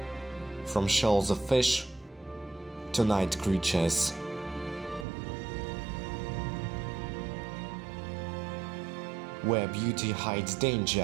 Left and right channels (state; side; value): drops out; left; at 5.1 s